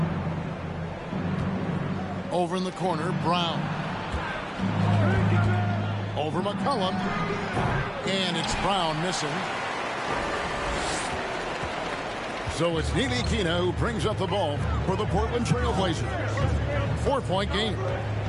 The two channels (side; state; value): both; identical; correlation 1.00